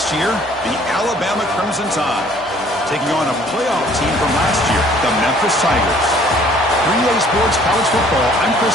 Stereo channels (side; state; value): both; normal; correlation 0.57